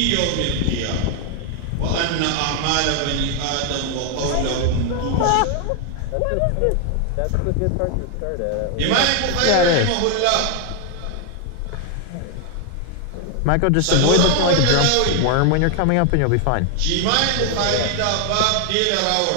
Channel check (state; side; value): different; both; correlation 0.00